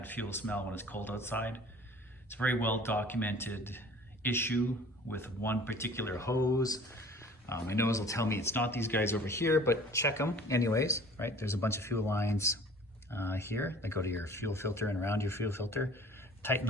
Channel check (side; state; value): both; normal; correlation 0.48